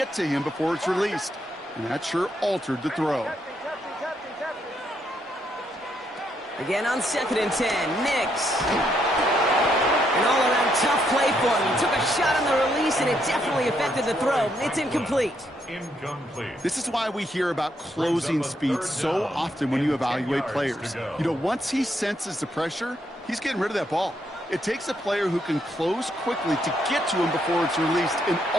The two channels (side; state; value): both; normal; correlation 0.75